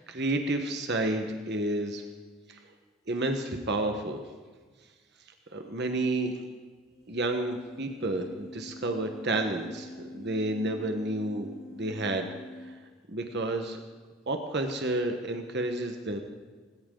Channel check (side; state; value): both; normal; correlation 0.38